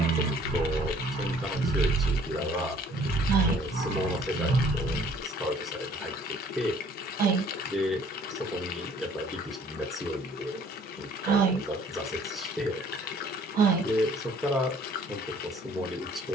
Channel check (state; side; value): normal; both; correlation 0.57